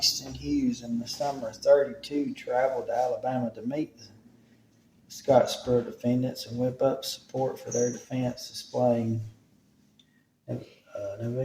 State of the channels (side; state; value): both; identical; correlation 1.00